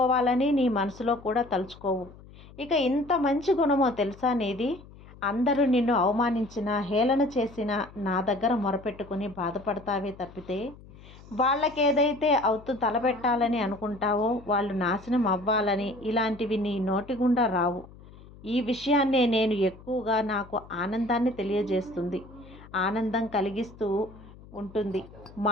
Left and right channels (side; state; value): left; noise; hum, 20 dB below the sound